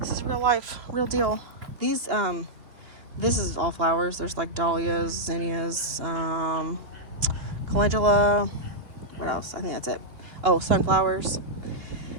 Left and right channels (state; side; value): late; left; 2.8 ms